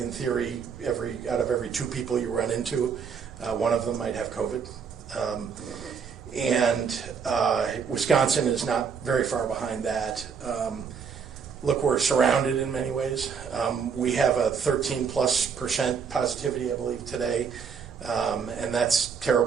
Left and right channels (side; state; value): left; quieter; 6.4 dB